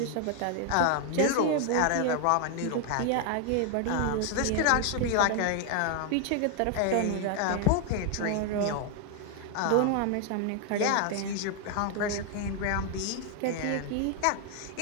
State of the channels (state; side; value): different; both; correlation 0.00